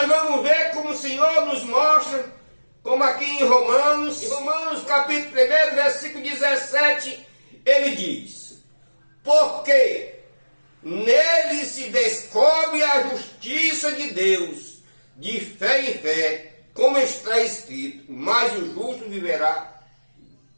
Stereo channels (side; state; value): both; inverted; correlation -1.00